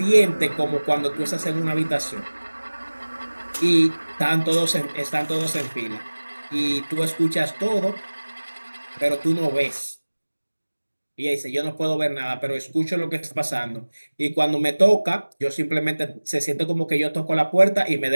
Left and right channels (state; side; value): inverted; both; correlation -1.00